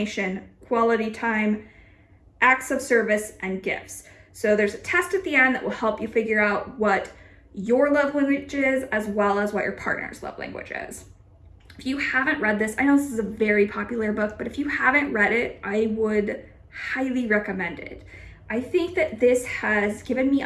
quality time, acts of service, and gifts. So there's a test at the end that will help you figure out what your love language is, as well as what your partner's love language is. If you haven't read this, I know this is a very popular book, but if you haven't read it, I would highly recommend it. I think that this has given me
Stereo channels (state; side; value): identical; both; correlation 1.00